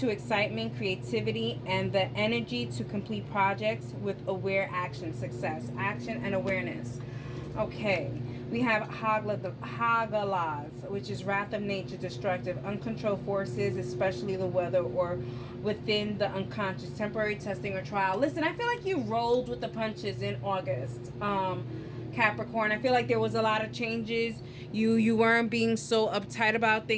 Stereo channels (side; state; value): both; identical; correlation 1.00